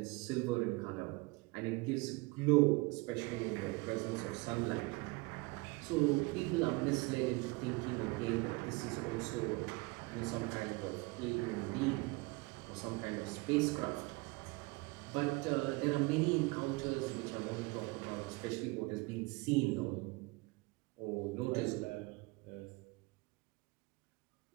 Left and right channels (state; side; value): quieter; left; 25.3 dB